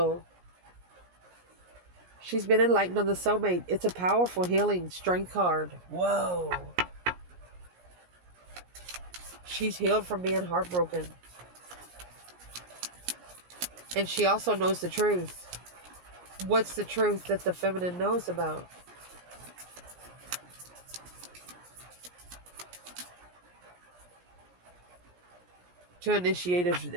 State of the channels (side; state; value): left; late; 17 ms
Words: She's been enlightened on the soulmate. It's a powerful healing strength card. Whoa. She's healed from being heartbroken. And she also knows the truth. What's the truth that the feminine knows about? To initiate